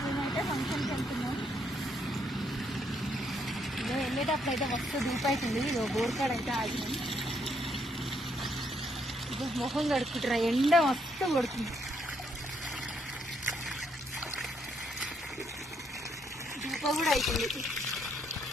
మేమైతే ఫంక్షన్కి వెళ్తున్నాం. ఇదో వెళ్ళేటప్పుడు అయితే మస్తు ధూపు అవుతుంది. ఇదో బోర్కాడ అయితే ఆగినాం. ఇదో మొహం కడుక్కుంటారా, ఎండ మస్తు కొడుతుంది. ధూప కూడా అవుతుంది.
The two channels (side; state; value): both; normal; correlation 0.73